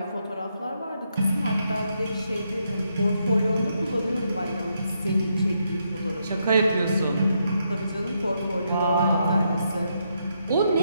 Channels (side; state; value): both; inverted; correlation -0.79